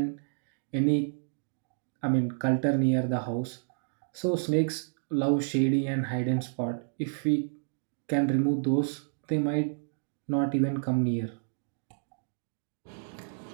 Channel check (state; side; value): silent; left; digital silence